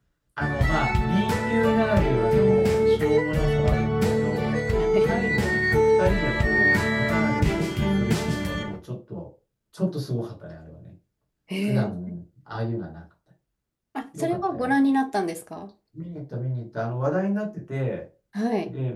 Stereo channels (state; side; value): identical; both; correlation 1.00